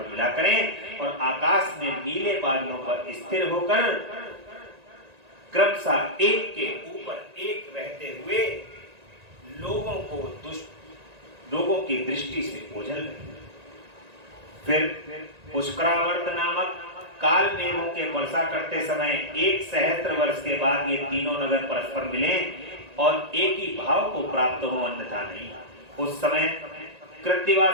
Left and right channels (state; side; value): late; left; 1.9 ms